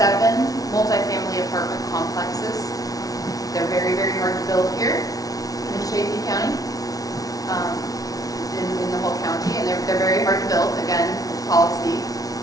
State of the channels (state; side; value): late; right; 0.18 ms